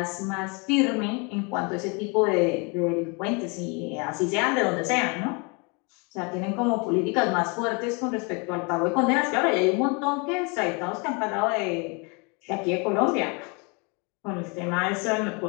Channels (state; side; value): quieter; right; 31.7 dB